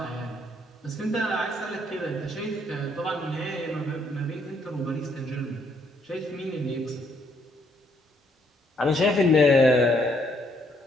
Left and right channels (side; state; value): both; normal; correlation 0.70